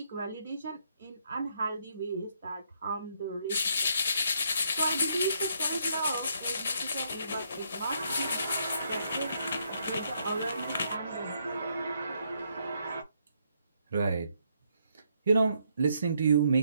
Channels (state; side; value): inverted; both; correlation -0.73